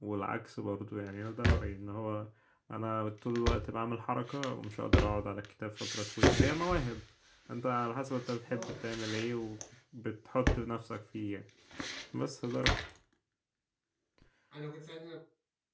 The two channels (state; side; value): identical; both; correlation 1.00